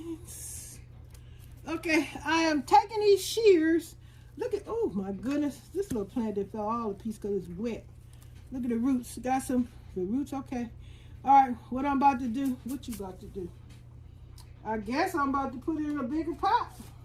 Okay, I am taking these shears. Look at, oh my goodness, this little plant that fell all to pieces because it's wet. Look at the roots. Got some, the roots, okay. All right, what I'm about to do, what you about to do? I guess I'm about to put it in a bigger pot.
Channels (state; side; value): identical; both; correlation 1.00